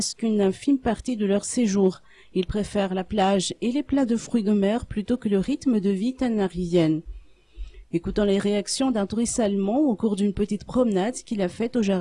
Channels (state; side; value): identical; both; correlation 1.00